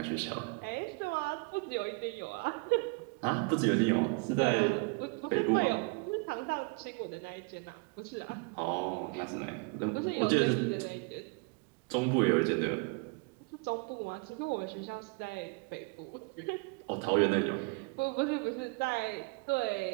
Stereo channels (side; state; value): left; quieter; 31.3 dB